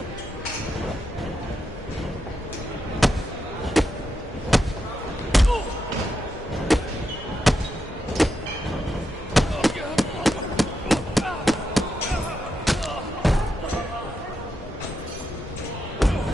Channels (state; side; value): normal; both; correlation 0.85